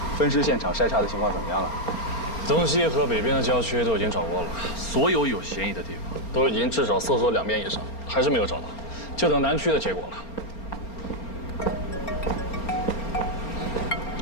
分尸现场筛查的情况怎么样了？东西和北边的郊区都已经找过了，所有有嫌疑的地方都已经至少搜索2遍以上，还是没有找到，就等南区的结果了。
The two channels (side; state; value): right; late; 4.3 ms